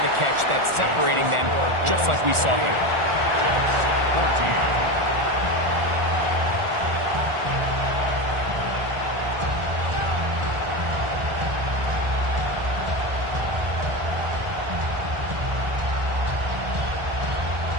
the catch that's separating them, just like we saw here. Jets 14.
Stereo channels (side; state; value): left; late; 1.4 ms